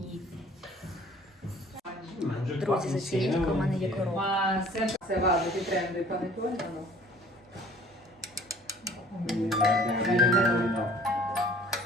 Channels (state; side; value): normal; both; correlation 0.52